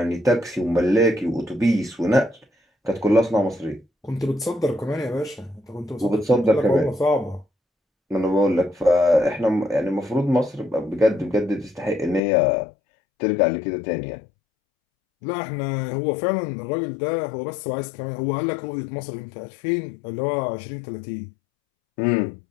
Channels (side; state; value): right; drops out; at 12.2 s